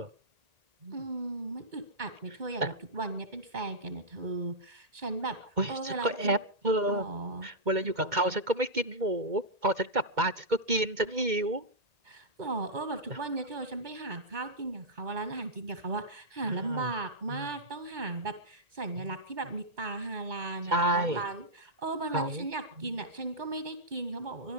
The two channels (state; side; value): late; left; 2.1 ms